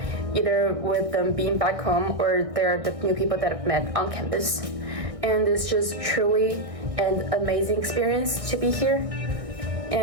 either with them being back home or they're the new people that I've met on campus. And it's just truly an amazing experience to be here.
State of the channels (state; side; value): late; left; 1.6 ms